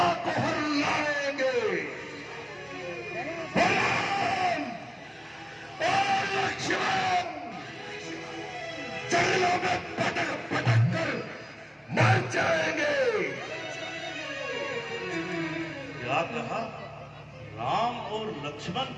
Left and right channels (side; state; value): both; identical; correlation 1.00